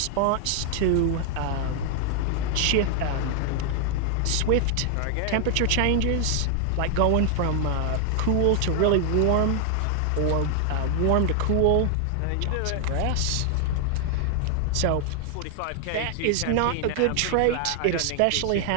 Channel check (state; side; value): different; both; correlation 0.00